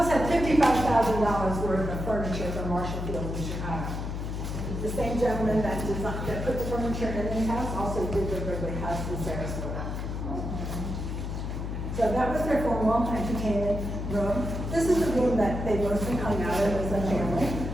had $55,000 worth of furniture from Marshall Field in Chicago. The same gentleman that put the furniture in the house also did the Wrigley House in Sarasota. So that was their formal entertainment room. This is the room that they mostly hung out in as a family.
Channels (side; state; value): left; noise; hum, 4 dB below the sound